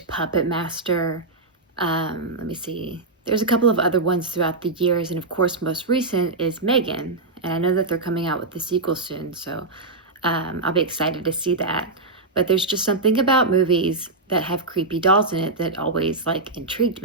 Puppet Master. Let me see. There's a couple of other ones throughout the years. And of course, most recent is Megan. And I know that they're coming out with the sequel soon. So I'll be excited to see that. But there's just something about movies that have creepy dolls in it that always like intrigued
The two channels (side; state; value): left; quieter; 3.4 dB